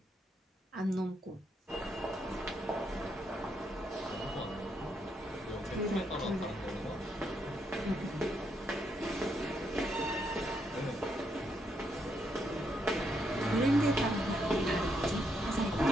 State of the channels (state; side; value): normal; both; correlation 0.77